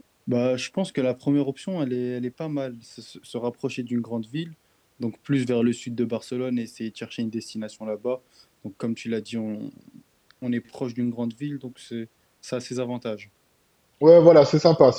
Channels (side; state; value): both; identical; correlation 1.00